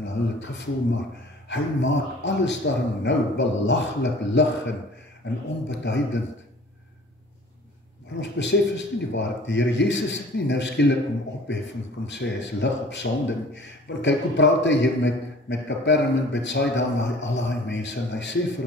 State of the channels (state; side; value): normal; both; correlation 0.48